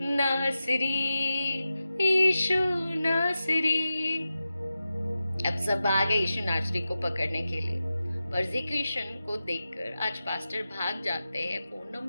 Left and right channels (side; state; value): both; inverted; correlation -0.92